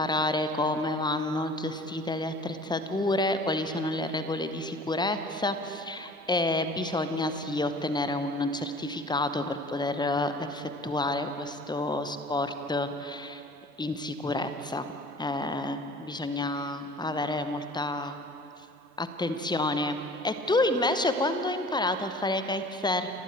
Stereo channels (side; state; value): both; normal; correlation 0.45